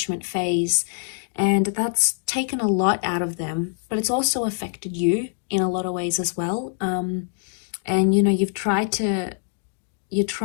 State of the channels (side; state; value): right; silent; digital silence